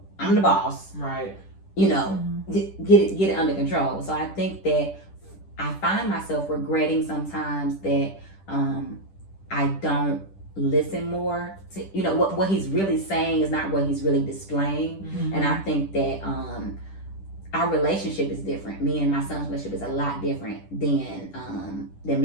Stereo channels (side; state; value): right; late; 10 ms